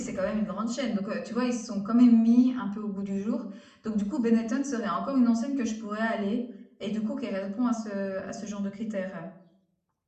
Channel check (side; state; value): both; identical; correlation 1.00